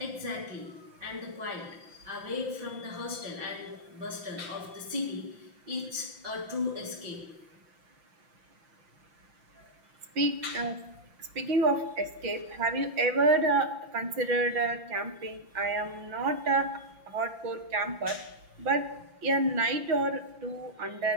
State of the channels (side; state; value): left; late; 5.8 ms